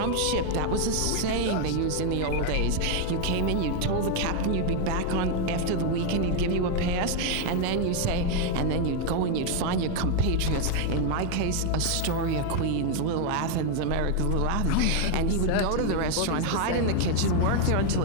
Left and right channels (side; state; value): both; different; correlation 0.01